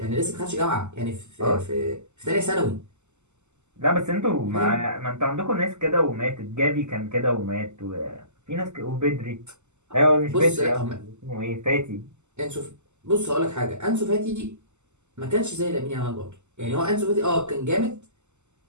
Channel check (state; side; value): late; left; 0.83 ms